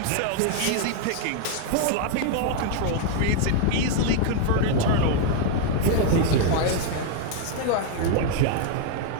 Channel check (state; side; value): different; both; correlation 0.00